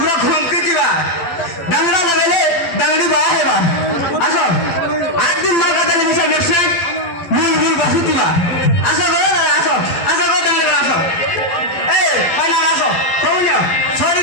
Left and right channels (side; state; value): right; late; 12 ms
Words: घुमके दिवा डांगड़ा लगाले डांगड़ी बा हेबा आसो आठ दिन मार काटले मिसे पेशेंट मुल मुल बसु दिवा आसो गो आसो आसो गो डांगड़ी आसो ए खाना आसो कौनियो सॉरी